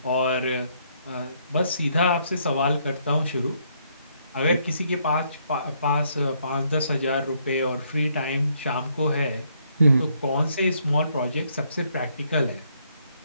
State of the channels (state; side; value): inverted; both; correlation -0.71